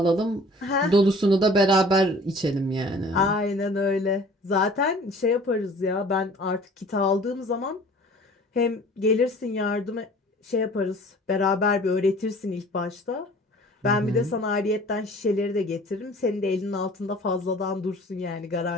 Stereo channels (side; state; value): both; normal; correlation 0.48